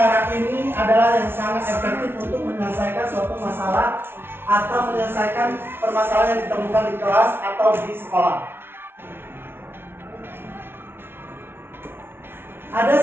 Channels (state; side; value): late; left; 0.11 ms